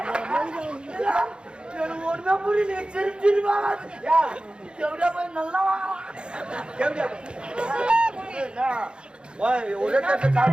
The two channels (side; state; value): left; late; 0.052 ms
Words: ஒருமே புரியல. சிரிச்சிருவாங்க எவ்வளோ போய் நல்லா